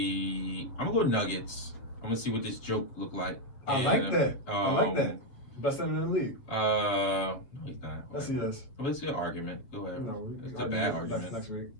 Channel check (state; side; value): late; right; 7.7 ms